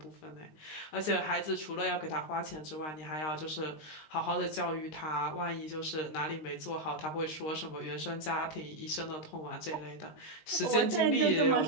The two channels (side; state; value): right; late; 19 ms